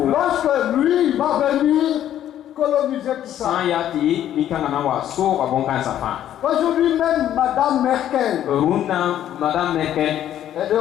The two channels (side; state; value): right; quieter; 11.3 dB